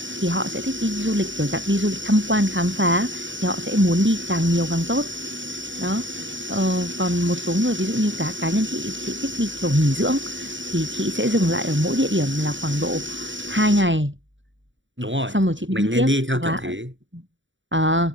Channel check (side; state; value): left; late; 0.55 ms